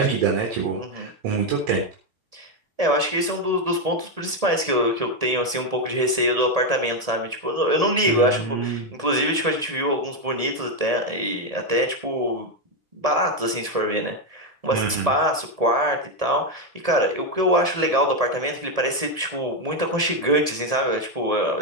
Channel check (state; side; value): late; left; 1.7 ms